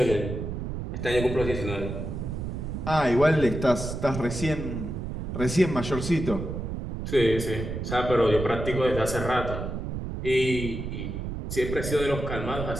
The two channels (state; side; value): noise; right; rumble, 5 dB below the sound